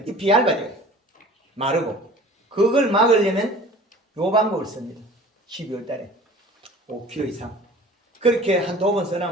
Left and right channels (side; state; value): both; normal; correlation 0.45